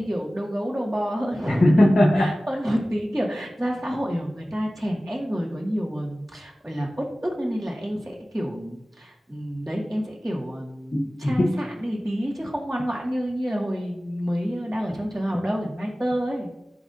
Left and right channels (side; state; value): both; normal; correlation 0.97